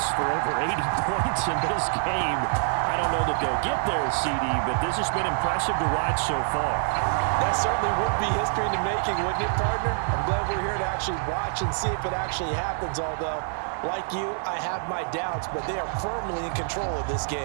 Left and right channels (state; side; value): silent; left; 61 dB below the other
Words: for over 80 points in this game. I don't know that they'll get there, CD, but this has been impressive to watch so far. That certainly would be history in the making, wouldn't it, partner? I'm glad we're here to actually watch and see if it actually happens, although, like you, I have my doubts, but they are firmly in control of this